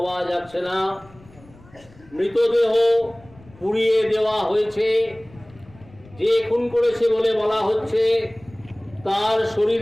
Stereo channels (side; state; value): left; noise; rumble, 25 dB below the sound